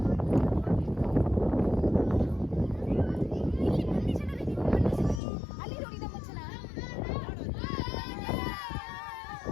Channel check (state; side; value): drops out; right; at 5.2 s